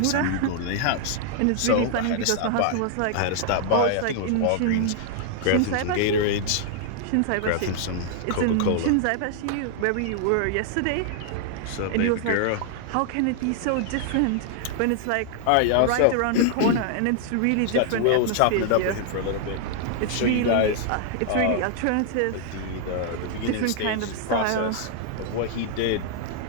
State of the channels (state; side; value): different; both; correlation -0.01